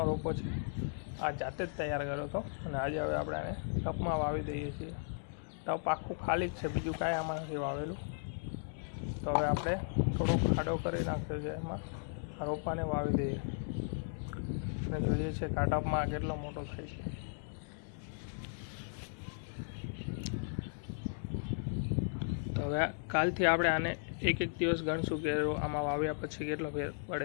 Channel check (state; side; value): silent; right; 54 dB below the other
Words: રોપો છે. આ જાતે જ તૈયાર કર્યો હતો અને આજે હવે આપણે આને ટપમાં વાવી દઈએ છીએ. ટપ આખું ખાલી જ છે, બીજું કાંઈ આમાં નથી વાવેલું. તો હવે આપણે થોડો ખાડો કરી નાખ્યો છે, એમાં આ રોપાને વાવી દઈએ અને જોઈએ છે કે આ ટપમાં કેટલો મોટો થાય છે. તો હવે કાલથી આપણે આને એક દિવસ ગણશું કે આમાં વાવ્યા પછી કેટલો ફેર